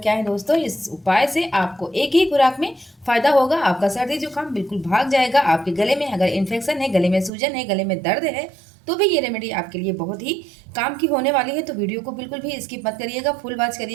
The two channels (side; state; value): left; drops out; at 7.3 s